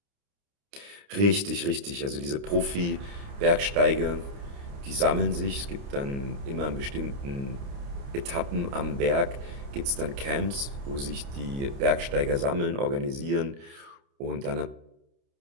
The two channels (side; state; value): left; late; 29 ms